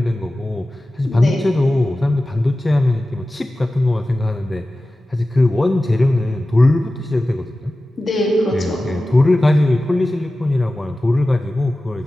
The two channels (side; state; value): both; normal; correlation 0.95